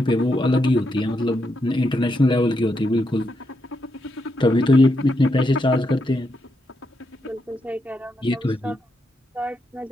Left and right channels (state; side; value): normal; both; correlation 0.82